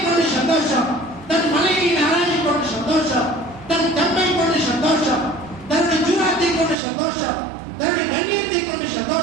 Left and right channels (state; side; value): drops out; left; at 6.8 s